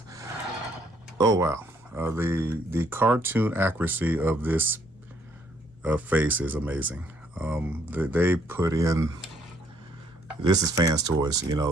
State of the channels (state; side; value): normal; both; correlation 0.67